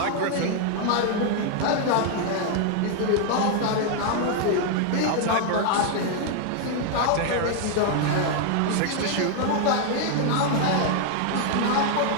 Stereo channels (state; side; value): different; both; correlation 0.00